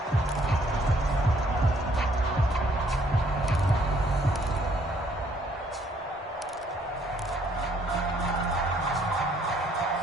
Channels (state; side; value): normal; both; correlation 0.65